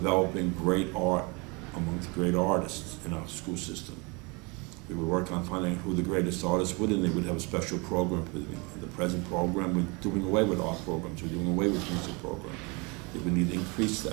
great art amongst great artists in our school system. We would work on finding out who the greatest artists would, and they would have a special program for them. In the present program, we're doing away with art programs. We're doing away with music programs. We need to increase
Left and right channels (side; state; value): left; quieter; 29.2 dB